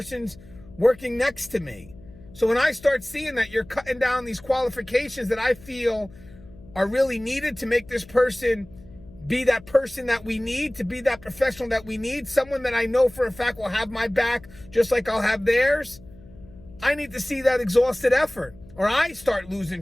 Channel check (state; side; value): noise; left; hum, 22 dB below the sound